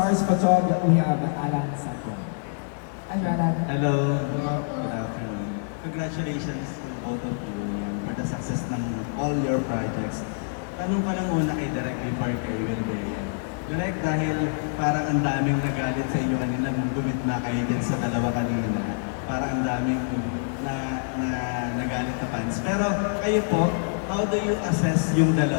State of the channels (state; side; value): silent; right; digital silence